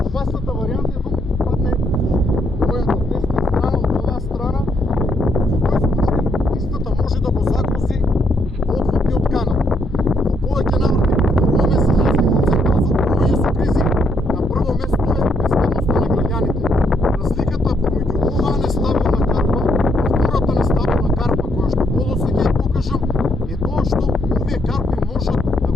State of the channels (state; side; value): normal; both; correlation 0.73